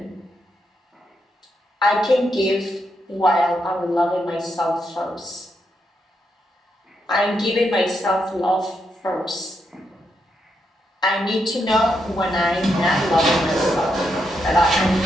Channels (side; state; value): both; normal; correlation 0.81